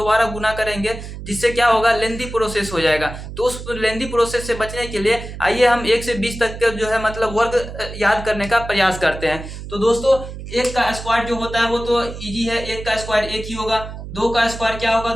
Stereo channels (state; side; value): noise; right; hum, 10 dB below the sound